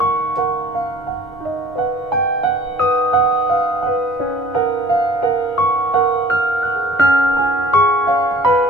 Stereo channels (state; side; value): normal; both; correlation 0.50